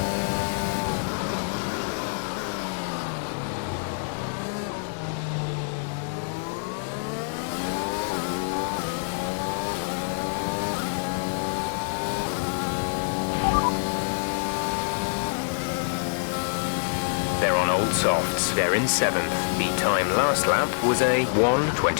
They're on old softs. They're in 7th. The time last lap was a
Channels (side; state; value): right; silent; digital silence